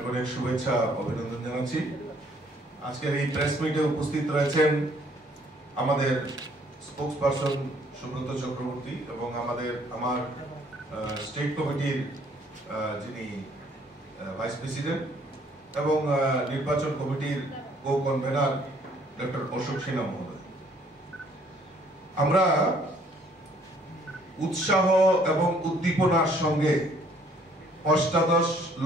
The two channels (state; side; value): normal; both; correlation 0.62